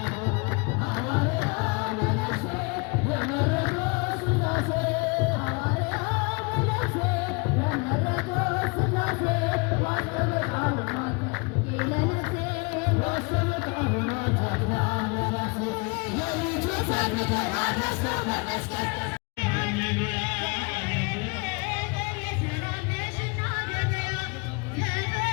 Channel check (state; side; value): quieter; right; 30.6 dB